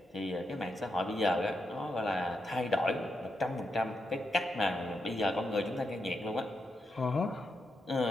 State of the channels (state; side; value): normal; both; correlation 0.84